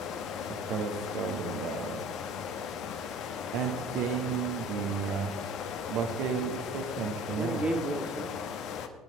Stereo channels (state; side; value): normal; both; correlation 0.46